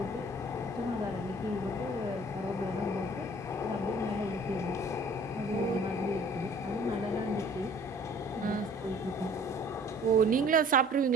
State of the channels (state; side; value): normal; both; correlation 0.52